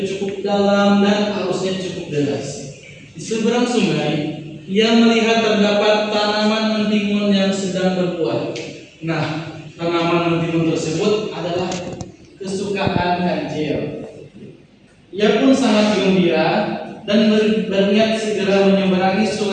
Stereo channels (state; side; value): identical; both; correlation 1.00